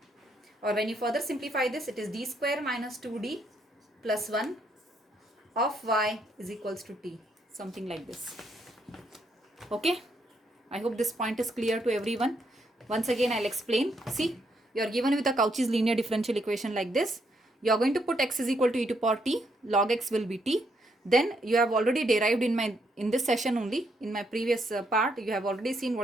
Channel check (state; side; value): normal; both; correlation 0.75